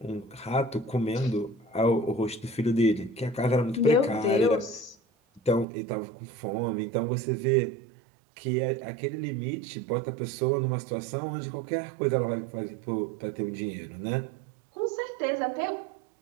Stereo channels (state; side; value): drops out; left; at 5.7 s